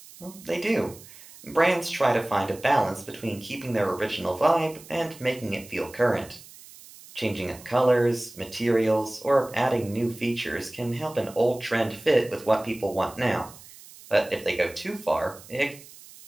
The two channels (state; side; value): noise; right; hiss, 20 dB below the sound